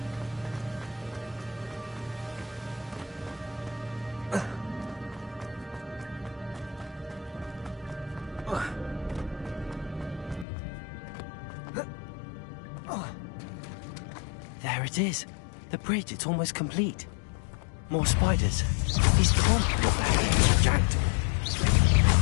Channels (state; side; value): drops out; right; at 10.5 s